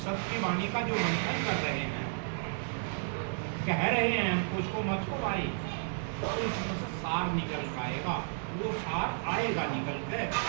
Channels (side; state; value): left; silent; digital silence